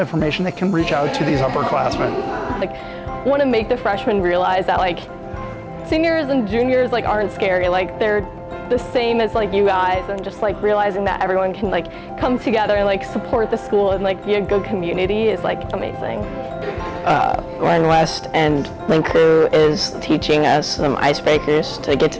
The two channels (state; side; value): identical; both; correlation 1.00